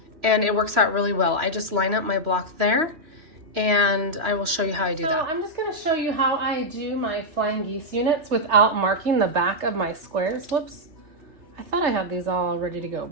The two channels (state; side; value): late; left; 3.1 ms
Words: and it works out really well. I just line up my block there, and I will show you how I do that. I'm just going to show you how I do my flying geese units without marking the back of my squares. Whoops. I thought I had these all ready to go,